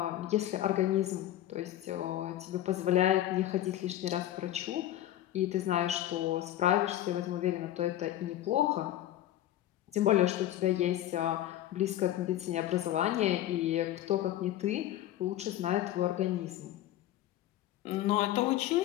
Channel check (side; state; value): right; quieter; 13.1 dB